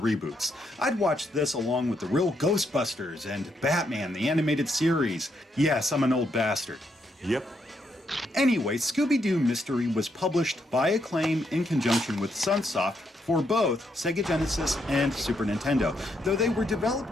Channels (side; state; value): both; normal; correlation 0.77